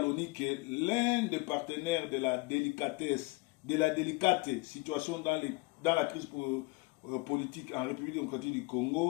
l'ONU que l'un des partenaires de la délicate situation dans la crise politique en République démocratique du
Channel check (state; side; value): quieter; right; 24.4 dB